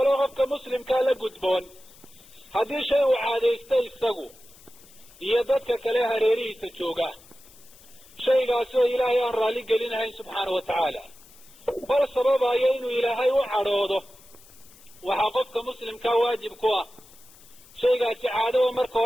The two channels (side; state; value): left; noise; hiss, 24 dB below the sound